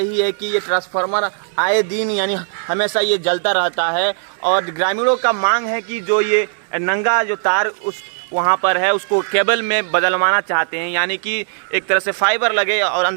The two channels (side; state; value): left; silent; digital silence